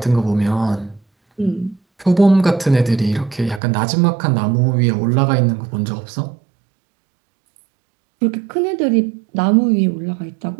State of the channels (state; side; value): drops out; left; at 3.6 s